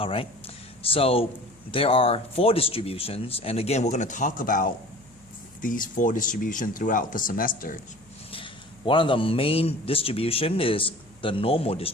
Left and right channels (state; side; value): noise; left; hum, 28 dB below the sound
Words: so there are 4 distributions, and again we're going to talk about these 4 distributions throughout the semester. One of the main distribution is the normal